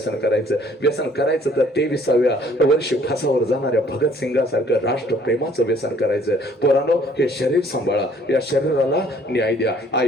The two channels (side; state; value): both; normal; correlation 0.59